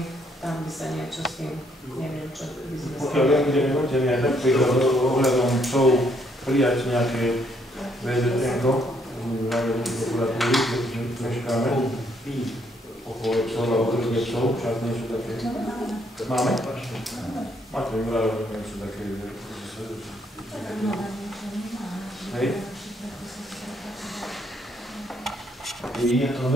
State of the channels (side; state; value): both; normal; correlation 0.70